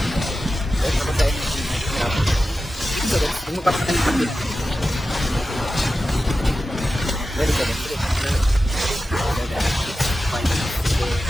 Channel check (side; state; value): both; normal; correlation 0.93